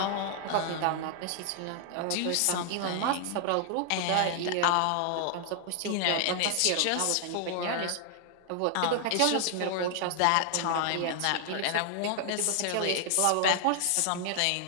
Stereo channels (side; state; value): both; different; correlation 0.00